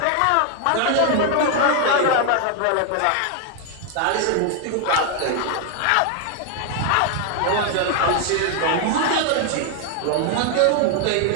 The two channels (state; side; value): different; both; correlation 0.01